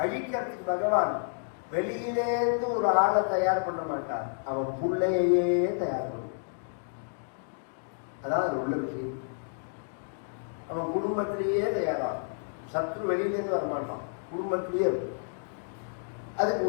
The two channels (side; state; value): right; silent; digital silence